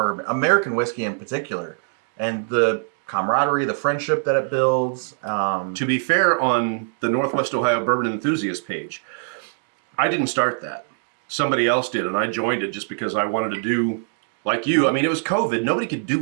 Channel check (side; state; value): left; silent; digital silence